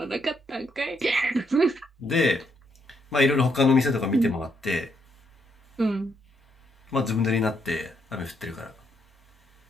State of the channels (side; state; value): both; normal; correlation 0.76